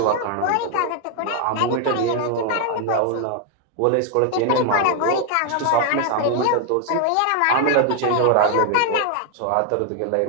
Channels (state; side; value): different; both; correlation 0.00